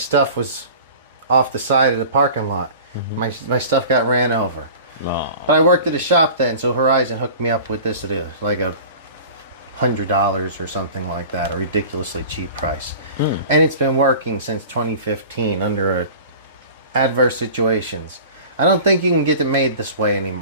was off the side of the parking lot. My stuff got ran over. Oh. But I worked at a shop then, so Horizon hooked me up with this at like $100 or something like that, a ridiculously cheap price. And it's been working since 2015 under adverse situations. I don't think you can get it made this way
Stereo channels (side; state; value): both; inverted; correlation -0.40